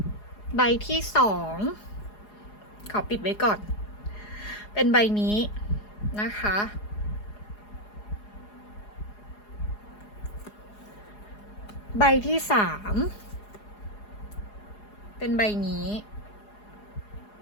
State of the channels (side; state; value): right; late; 4.8 ms